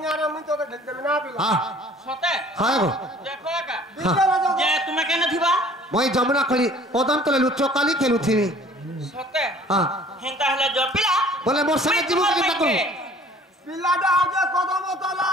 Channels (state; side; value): normal; both; correlation 0.51